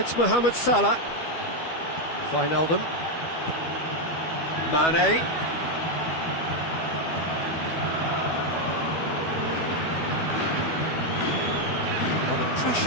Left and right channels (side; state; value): right; late; 12 ms